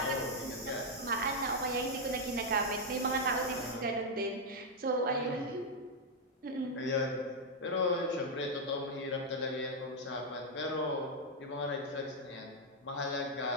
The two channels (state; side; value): normal; both; correlation -0.01